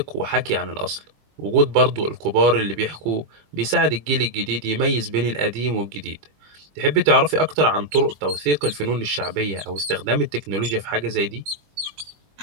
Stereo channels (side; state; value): left; late; 21 ms